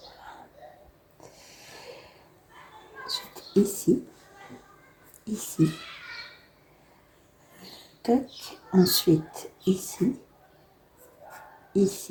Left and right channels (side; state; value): both; identical; correlation 1.00